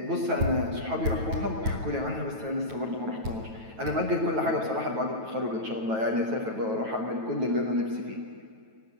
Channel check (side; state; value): left; late; 9.2 ms